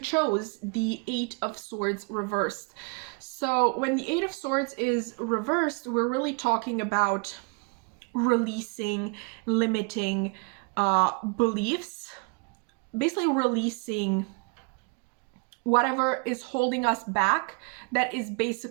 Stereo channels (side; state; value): left; quieter; 32.6 dB